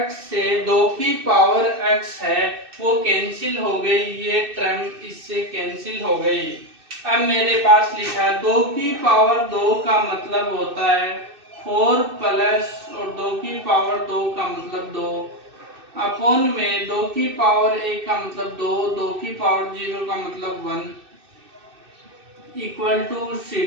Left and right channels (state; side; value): late; left; 2.6 ms